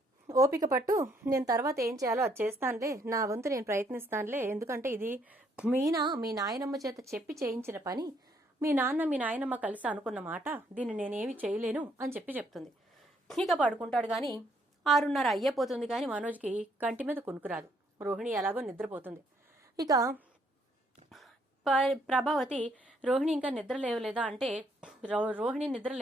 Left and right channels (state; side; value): normal; both; correlation 0.69